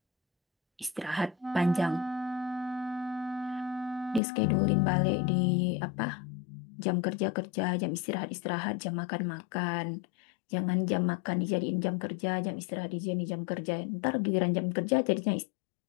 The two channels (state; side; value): drops out; right; at 4.2 s